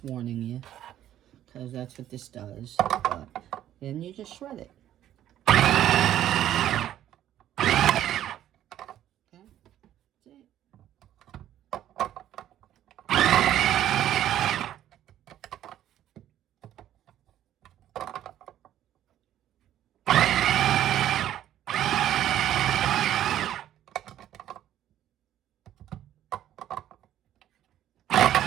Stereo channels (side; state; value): left; quieter; 11.9 dB